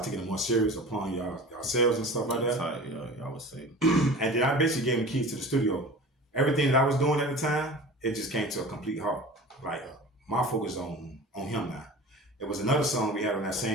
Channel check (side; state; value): both; normal; correlation 0.37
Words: taking it more serious upon yourselves and stuff like that. Y'all would say. And then I basically gave him keys to the studio. Everything that I was doing at the time, it just came to a complete halt. Like, my focus on him now. It was another song we had on that